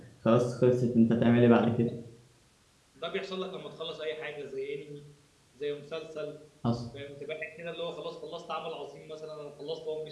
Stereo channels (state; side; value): identical; both; correlation 1.00